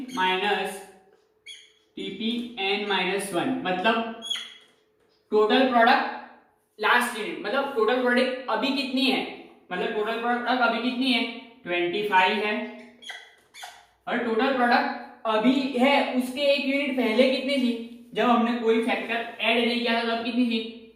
मतलब टोटल प्रोडक्ट लास्ट यूनिट, मतलब टोटल प्रोडक्ट अभी कितनी है, मतलब टोटल प्रोडक्ट अभी कितनी है 25 है, और टोटल प्रोडक्ट अभी है उसके एक यूनिट पहले कितनी थी, जब हमने कोई फैक्टर ऐड नहीं किया था तब कितनी थी,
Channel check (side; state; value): both; identical; correlation 1.00